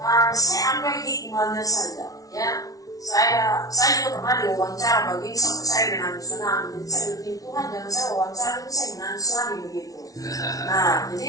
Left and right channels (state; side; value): late; right; 0.18 ms